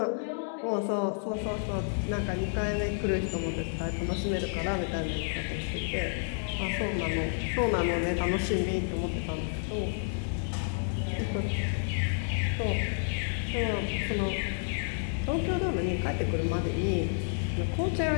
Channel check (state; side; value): silent; right; digital silence